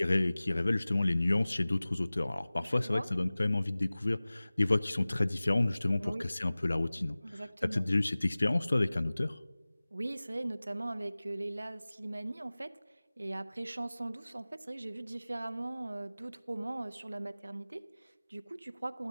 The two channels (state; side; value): inverted; both; correlation -0.99